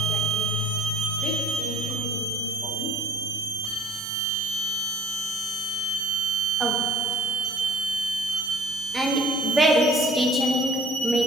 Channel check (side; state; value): both; normal; correlation 0.52